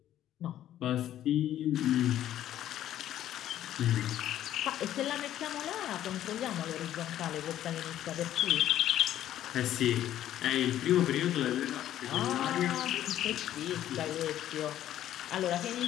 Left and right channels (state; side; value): quieter; right; 12.0 dB